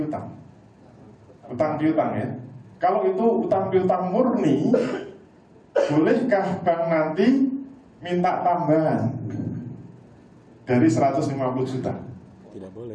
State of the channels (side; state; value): both; identical; correlation 1.00